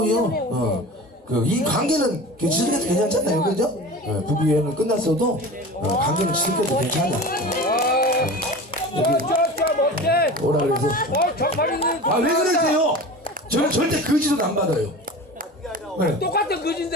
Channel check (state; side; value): normal; both; correlation 0.34